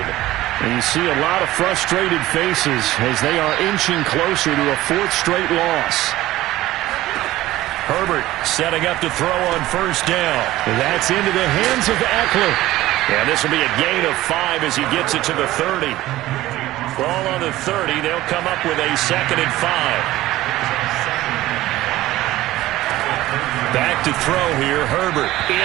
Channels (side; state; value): left; quieter; 16.2 dB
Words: And you see a lot of frustrated faces as they are inching closer to a 4th straight loss. Herbert setting up to throw on 1st down. And that's into the hands of Eckler. And this will be a gain of 5 as he gets it to the 30. Ball on the 30. They'll come up with a 2nd and 5. Back to throw here, Herbert,